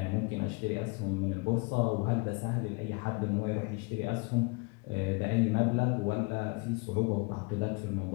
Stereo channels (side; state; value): right; quieter; 29.2 dB